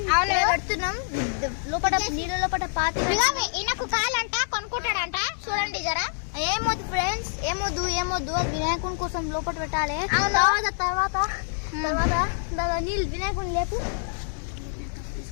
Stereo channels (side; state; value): right; silent; digital silence